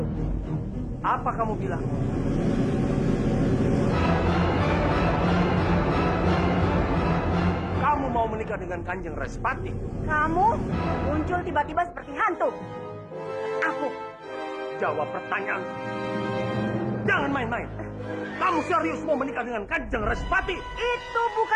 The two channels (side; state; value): both; identical; correlation 1.00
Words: Apa kamu bilang? Kamu mau menikah dengan Kanjeng Respati? Kamu muncul tiba-tiba seperti hantu. Aku. Jawab pertanyaan. Jangan main-main. Kamu serius mau menikah dengan Kanjeng Respati? Itu